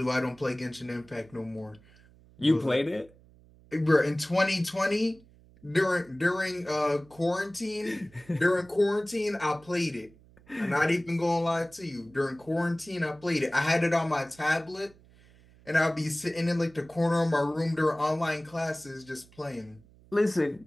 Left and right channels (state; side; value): noise; right; hum, 26 dB below the sound